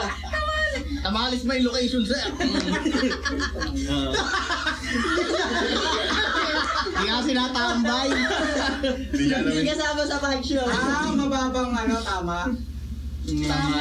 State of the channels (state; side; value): identical; both; correlation 1.00